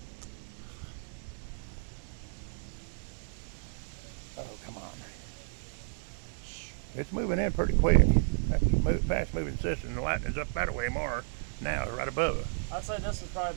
Oh, come on. It's moving in pretty quick. That's a fast moving system. The lightning's up that way more now, right above it. I'd say this is probably a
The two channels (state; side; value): silent; left; digital silence